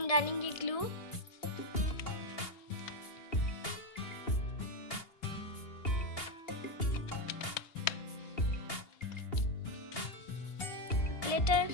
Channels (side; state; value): right; late; 2.8 ms